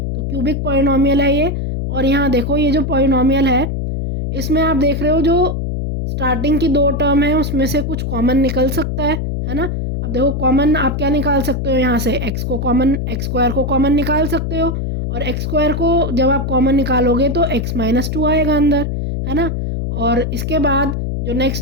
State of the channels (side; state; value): left; noise; hum, 2 dB below the sound